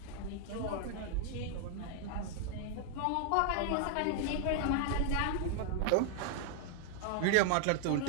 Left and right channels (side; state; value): both; different; correlation 0.00